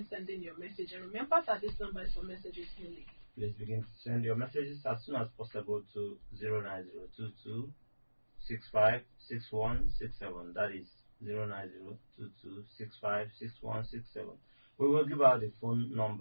sending your message, and remember that this number is for messages only. Please begin to send your messages as soon as possible to 09022 65 6167. That is 09022 65 6167. We will give out the phone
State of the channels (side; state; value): both; inverted; correlation -1.00